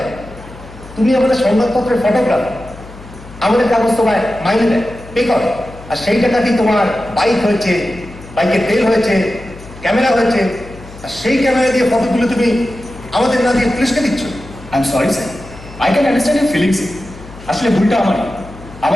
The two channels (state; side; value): noise; left; hum, 18 dB below the sound